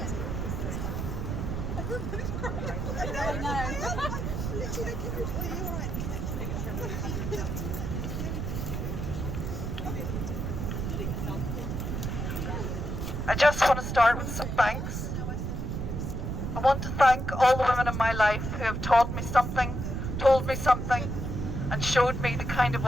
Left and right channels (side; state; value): right; noise; rumble, 3 dB below the sound